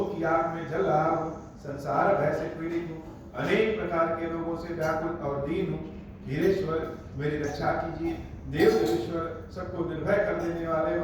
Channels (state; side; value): identical; both; correlation 1.00